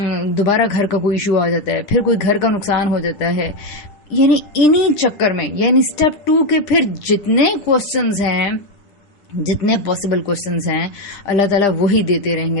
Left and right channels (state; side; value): late; right; 9.9 ms